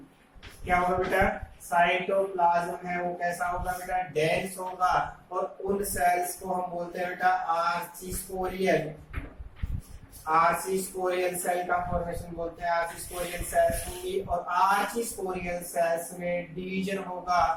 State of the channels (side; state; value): both; identical; correlation 1.00